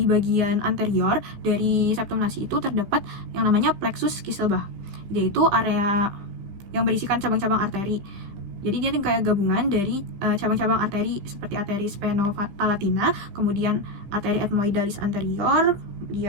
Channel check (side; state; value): left; late; 15 ms